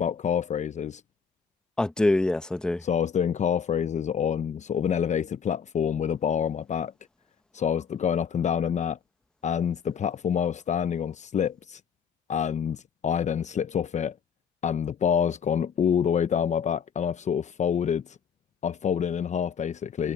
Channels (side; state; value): right; quieter; 6.9 dB